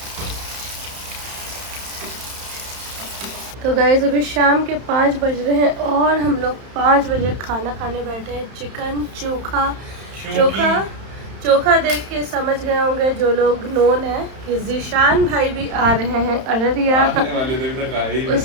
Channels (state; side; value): late; left; 31 ms